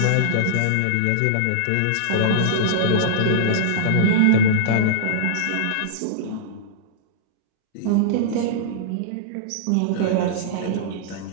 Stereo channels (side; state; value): both; different; correlation -0.02